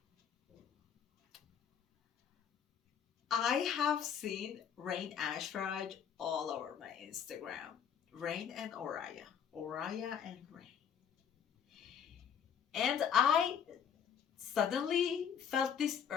I have seen Rain Ashraj all over my Instagram. Rain and Oraya. Oraya and Rain. And I suddenly felt this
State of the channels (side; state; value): right; quieter; 8.0 dB